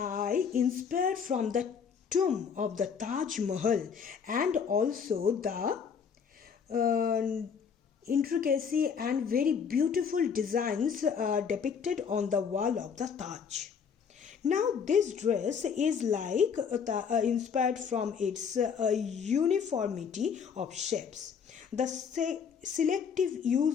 inspired from the tomb of the Taj Mahal and also the intricacy and very beautiful designs depicted on the wall of the Taj. Now this dress is like inspired from its uniformity of shapes. The selective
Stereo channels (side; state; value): right; quieter; 6.7 dB